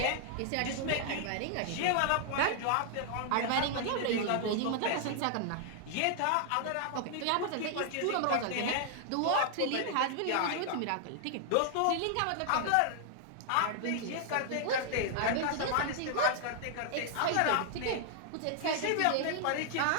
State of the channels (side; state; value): both; different; correlation 0.00